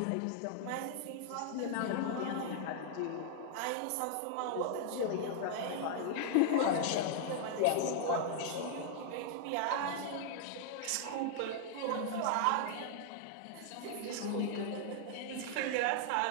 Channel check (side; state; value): both; different; correlation -0.01